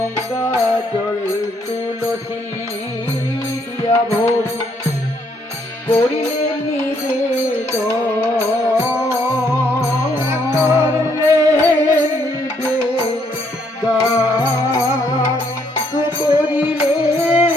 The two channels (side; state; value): both; normal; correlation 0.70